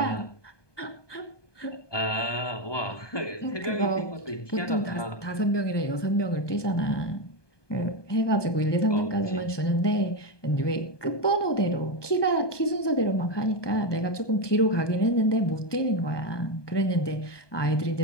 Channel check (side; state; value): right; late; 1.2 ms